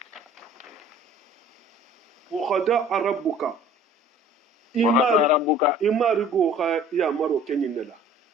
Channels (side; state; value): both; normal; correlation 0.50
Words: wa qada rabbuka imarigo ha ya maro kenyinela